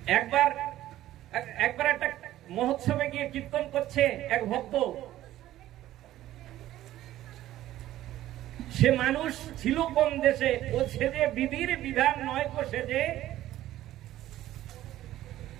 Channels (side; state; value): left; quieter; 14.1 dB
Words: একবার একটা মহোৎসবে গিয়ে কীর্তন করছে এক ভক্ত। সে মানুষ ছিল কোন দেশে, ও সেজে বিধির বিধান নয় কো সেজে